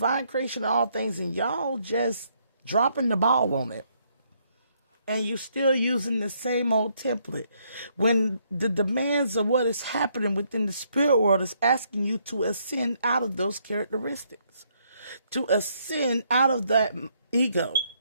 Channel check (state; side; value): inverted; both; correlation -0.72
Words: creation of all things and y'all just dropping the ball on it? And you're still using the same old template when the demands of what is happening within the spirit world is asking you to ascend out of those characteristics, to ascend out of that ego,